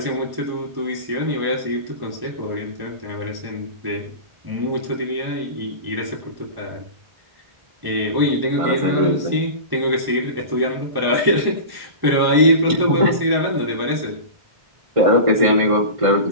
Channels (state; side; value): late; left; 1.1 ms